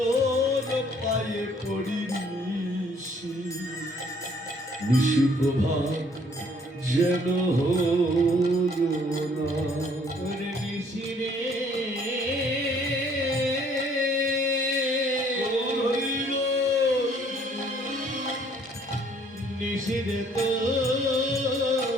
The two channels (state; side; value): normal; both; correlation 0.61